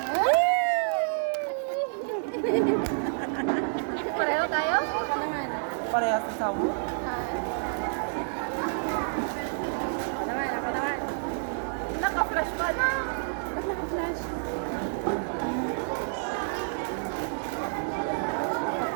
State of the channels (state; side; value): silent; left; digital silence